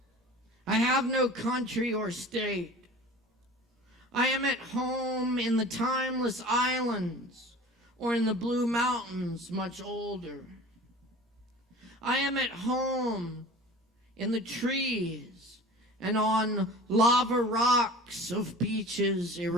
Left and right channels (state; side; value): normal; both; correlation 0.40